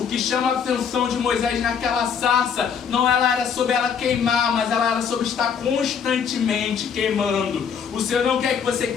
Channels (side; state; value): right; quieter; 7.0 dB